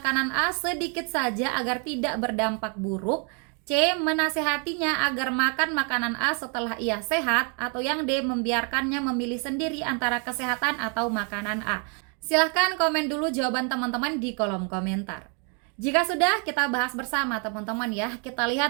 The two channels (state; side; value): quieter; left; 38.0 dB